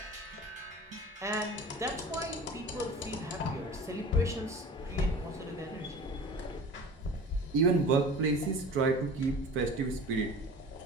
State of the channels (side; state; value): both; normal; correlation 0.40